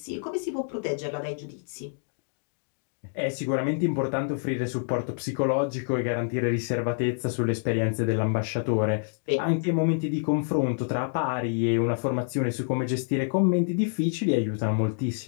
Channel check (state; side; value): silent; right; digital silence